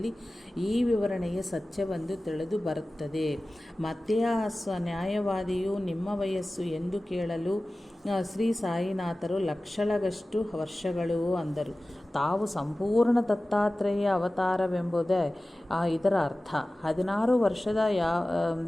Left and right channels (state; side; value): normal; both; correlation 0.97